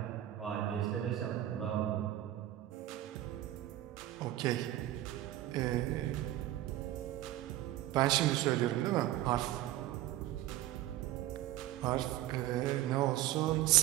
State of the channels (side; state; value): left; quieter; 14.2 dB